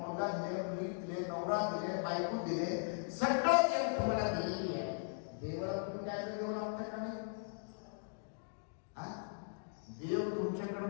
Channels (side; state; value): right; silent; digital silence